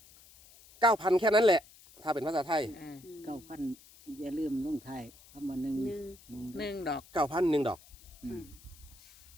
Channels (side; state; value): left; noise; hiss, 23 dB below the sound